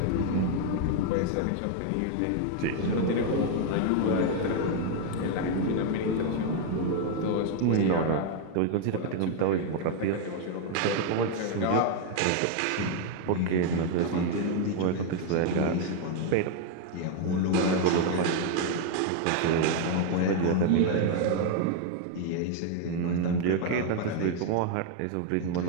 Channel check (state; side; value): different; both; correlation 0.00